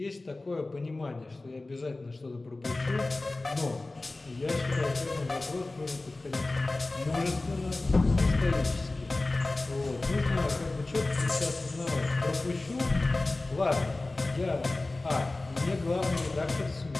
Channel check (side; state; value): right; quieter; 3.1 dB